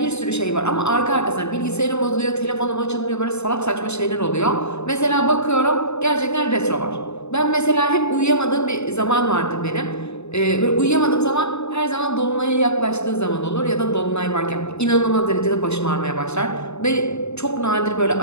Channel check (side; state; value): right; late; 0.81 ms